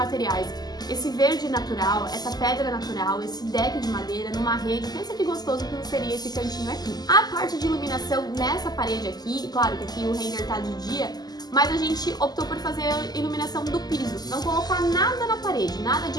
esse verde natural, essa pedra natural, esse deck de madeira numa rede. Pensa que gostoso que seria esse cantinho aqui. A parte de iluminação nessa parede aqui, claro que aqui o render tá de dia, mas a gente optou por fazer a iluminação do piso, não colocar nada na parede, nada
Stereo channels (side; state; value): right; late; 0.20 ms